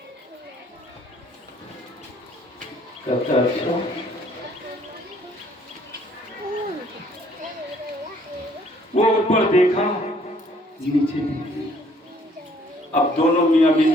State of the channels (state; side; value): normal; both; correlation 0.62